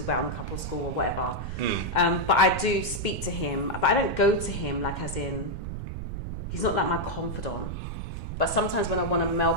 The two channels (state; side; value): noise; right; rumble, 6 dB below the sound